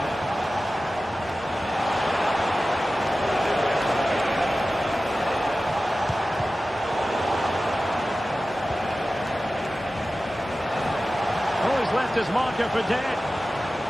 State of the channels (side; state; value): both; normal; correlation 0.95